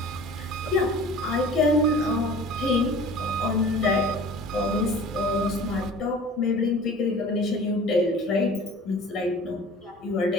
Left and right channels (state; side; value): normal; both; correlation 0.43